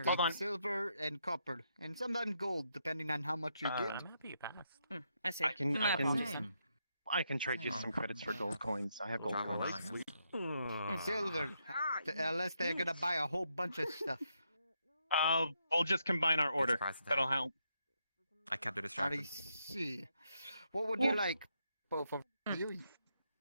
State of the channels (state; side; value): inverted; both; correlation -0.79